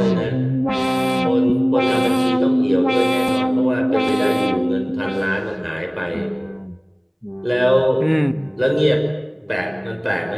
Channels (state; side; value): identical; both; correlation 1.00